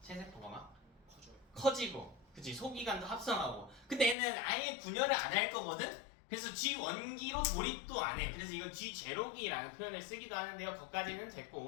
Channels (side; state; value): right; drops out; at 4.2 s